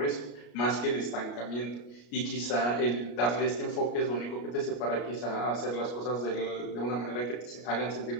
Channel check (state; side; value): late; right; 33 ms